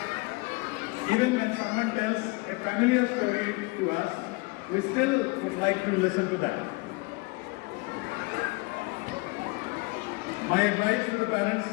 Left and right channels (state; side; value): quieter; right; 26.1 dB